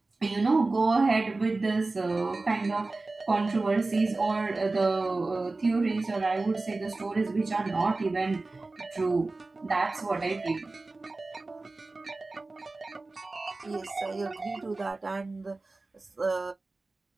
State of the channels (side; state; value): left; quieter; 3.3 dB